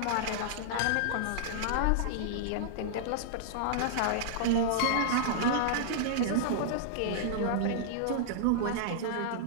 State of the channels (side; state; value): both; different; correlation -0.02